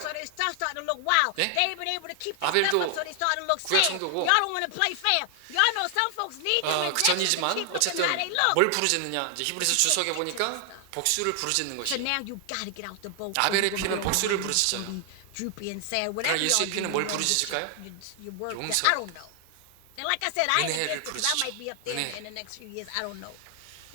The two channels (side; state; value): both; different; correlation 0.00